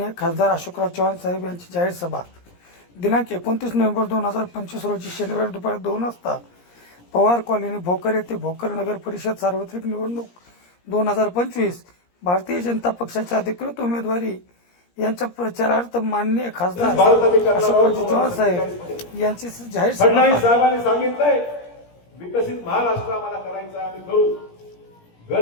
खासदार अशोकराव चव्हाण साहेब यांची जाहीर सभा दिनांक 29 नोव्हेंबर 2025 रोजी शनिवारी दुपारी 2 वाजता पवार कॉलनी भोकर येथे भोकर नगर परिषद सार्वत्रिक निवडणूक 2025 भारतीय जनता पक्षाचे अधिकृत उमेदवारी यांच्या प्रचारार्थ माननीय खासदार अशोकराव चव्हाण साहेब यांची जाहीर फडणवीस साहेबांनी सांगितलंय विकसित महाराष्ट्र आम्हाला करायचा आहे, आम्ही करू. घर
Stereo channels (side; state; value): right; late; 17 ms